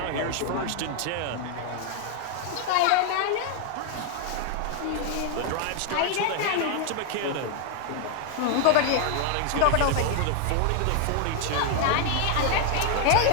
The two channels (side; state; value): both; different; correlation 0.00